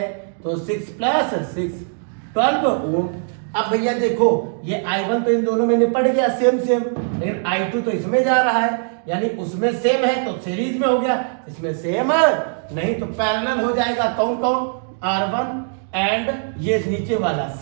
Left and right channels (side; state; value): left; silent; 65 dB below the other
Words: तो 6 प्लस 6 12 ओम। अब भैया देखो ये I1 तो इन दोनों में निपट गया सेम सेम, लेकिन I2 तो इसमें जा रहा है, यानी उसमें सेम है तो सीरीज में हो गया, इसमें सेम नहीं तो पैरेलल हो जाएगा। कौन कौन? R1 एंड ये नीचे वाला